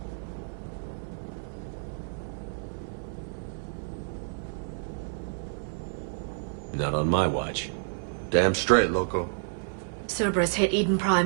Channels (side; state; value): left; silent; 58 dB below the other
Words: Not on my watch. Damn straight, loco. Cerberus hit Eden